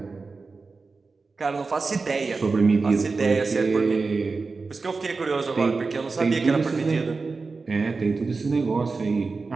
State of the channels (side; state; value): left; quieter; 4.2 dB